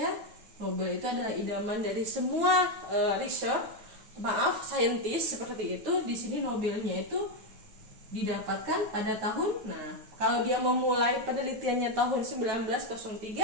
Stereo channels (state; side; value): late; left; 9.2 ms